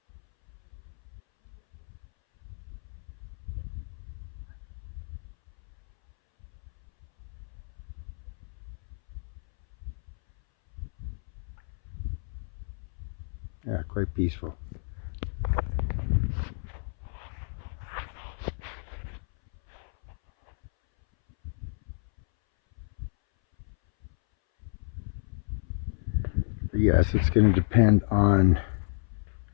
Yeah, quite peaceful. But yes, it's going to depend on,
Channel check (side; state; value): right; silent; 57 dB below the other